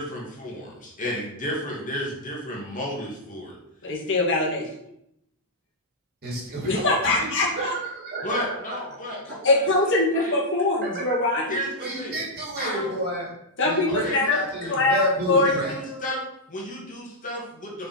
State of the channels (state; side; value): normal; both; correlation -0.07